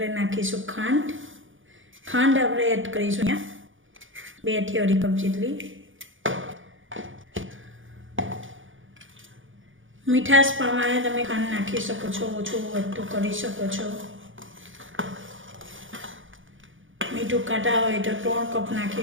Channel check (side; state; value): left; late; 0.57 ms